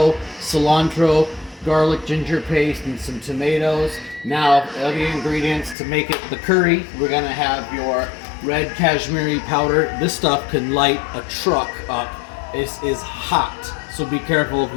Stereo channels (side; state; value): right; drops out; at 5.8 s